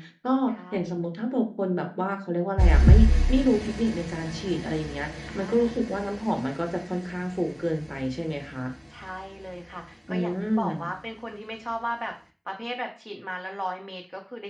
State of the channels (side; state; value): both; identical; correlation 1.00